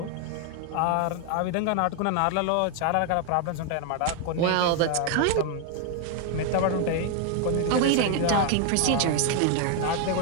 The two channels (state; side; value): different; both; correlation 0.00